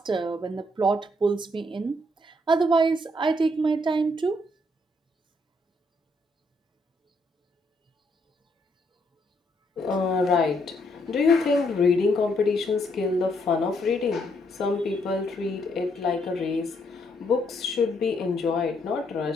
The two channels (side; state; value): both; normal; correlation 0.73